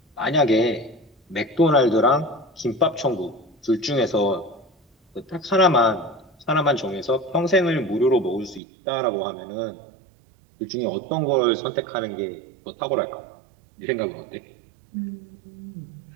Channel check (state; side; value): drops out; left; at 8.6 s